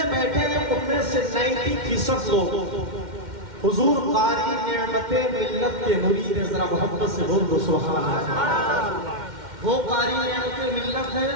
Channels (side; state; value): left; late; 2.1 ms